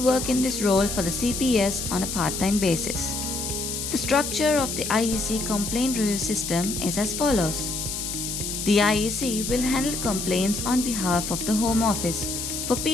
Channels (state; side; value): noise; left; hiss, 4 dB below the sound